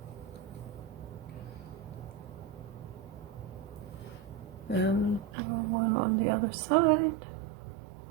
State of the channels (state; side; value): drops out; left; at 5.3 s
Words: And one on the other side.